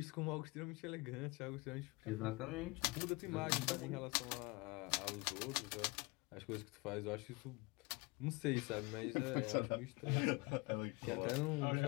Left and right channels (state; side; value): quieter; right; 25.9 dB